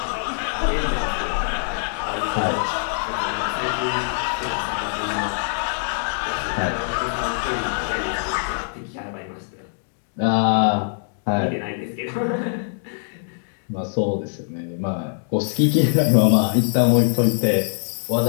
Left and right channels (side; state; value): right; silent; digital silence